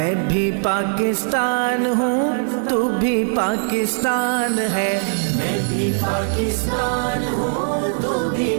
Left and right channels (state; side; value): silent; left; 66 dB below the other